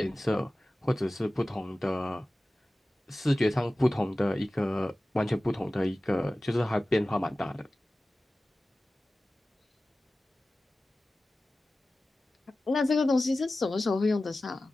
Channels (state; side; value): normal; both; correlation 0.96